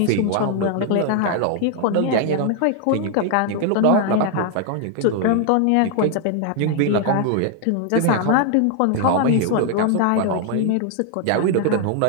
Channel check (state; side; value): different; both; correlation 0.00